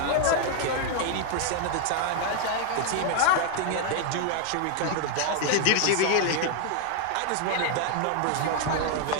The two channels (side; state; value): both; different; correlation 0.00